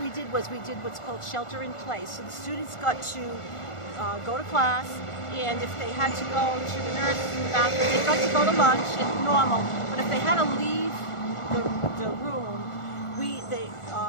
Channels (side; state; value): right; late; 1.4 ms